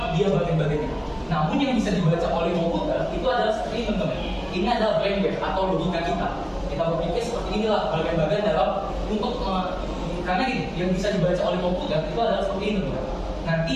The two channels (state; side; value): identical; both; correlation 1.00